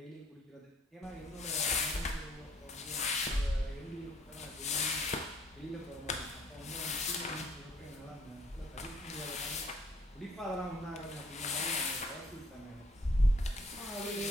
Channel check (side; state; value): both; normal; correlation 0.63